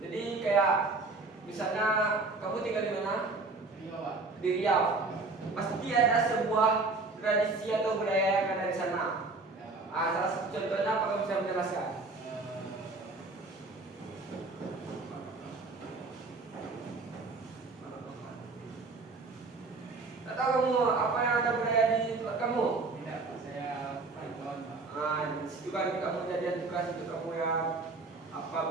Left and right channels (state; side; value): quieter; left; 3.6 dB